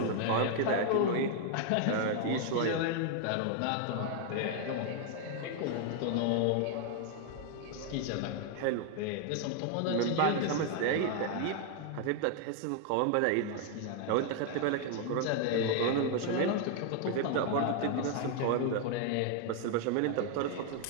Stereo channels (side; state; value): both; different; correlation 0.00